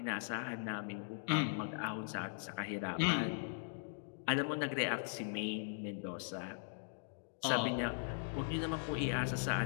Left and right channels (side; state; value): right; silent; digital silence